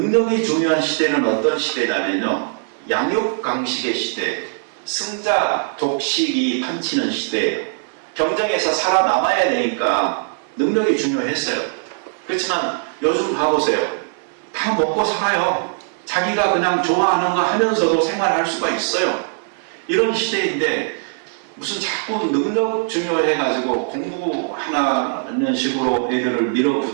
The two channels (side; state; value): left; silent; digital silence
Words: 중요한 시대는 어떤 시대냐면요, 양육강식의 시대, 승자 독식이 판치는 시대예요. 경쟁에서 살아남아야 되니까 능력이 중요했어요. 그렇지만 요즘 봐보세요. 다 먹고 살아요. 자기가 그냥 좋아하는 거 하면서도 생활할 수가 있어요. 이런 시대인데 무슨 자꾸 능력 중요해가지고 공부하는 식으로 애들을